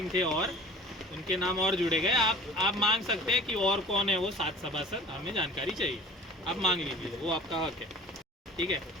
थे और उनके नाम और जुड़े गए. आप मांग सकते हैं कि और कौन है वो 7 सभासद, हमें जानकारी चाहिए. आप मांग लीजिए, वो आपका हक है. ठीक आहे.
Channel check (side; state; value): both; normal; correlation 0.44